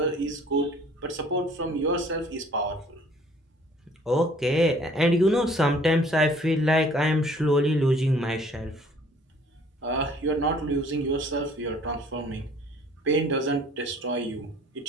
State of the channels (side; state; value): both; normal; correlation 0.55